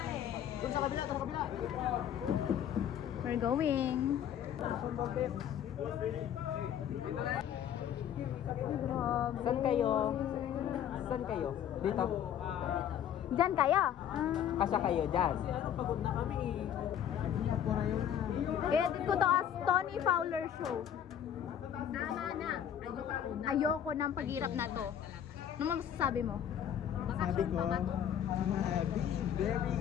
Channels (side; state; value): right; quieter; 9.6 dB